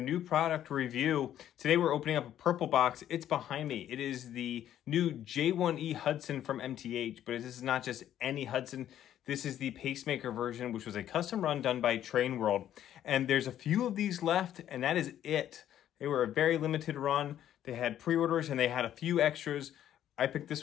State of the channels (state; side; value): quieter; right; 11.2 dB